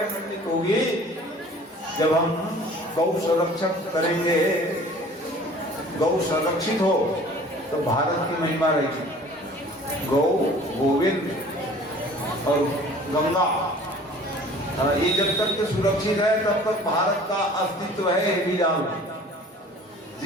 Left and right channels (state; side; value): normal; both; correlation 0.48